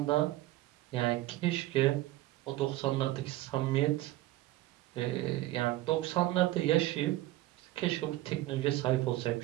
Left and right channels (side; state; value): left; quieter; 16.6 dB